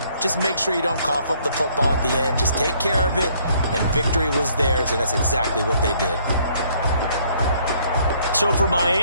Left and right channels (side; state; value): both; inverted; correlation -0.64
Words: Just make sure you don't cough up the football at the end. Just take care of it, and victory was theirs, and that's exactly what they did. So for